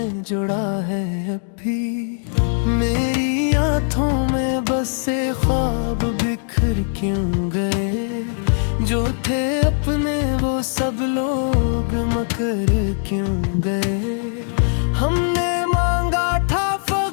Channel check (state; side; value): silent; right; 65 dB below the other